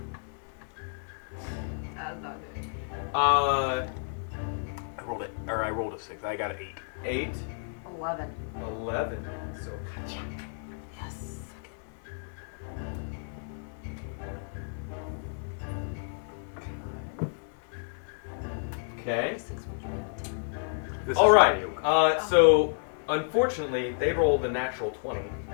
That's not good. uh, I rolled a 6. I got an 8. 8, 11. 11. So, Yes. okay. 6 would be a 10. This All is right. Ronnie Oak. So, unfortunately, they rolled a natural 20.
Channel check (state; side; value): silent; right; 57 dB below the other